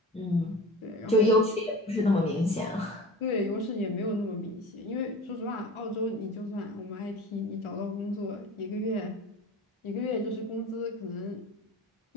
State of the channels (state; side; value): normal; both; correlation 0.36